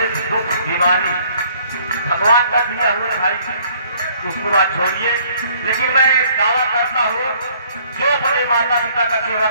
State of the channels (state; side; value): inverted; both; correlation -0.61